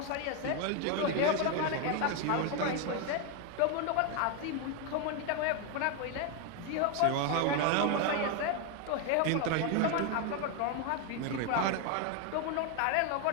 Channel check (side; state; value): both; different; correlation 0.02